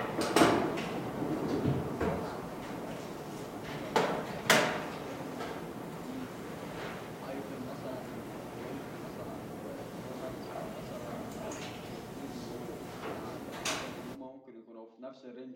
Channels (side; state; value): both; identical; correlation 1.00